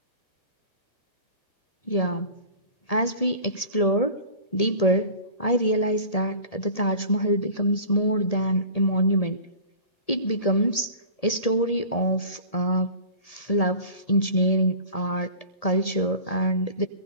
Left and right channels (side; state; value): right; late; 1.8 ms